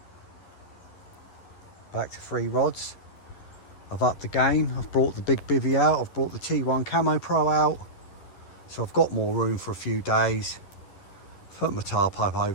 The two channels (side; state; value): right; late; 11 ms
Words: Back to 3 rods. I've upped the game. I've brought the big bivvy out. I've brought the T1 Camo Pro out. So I've got more room for a few days. Put my tarp up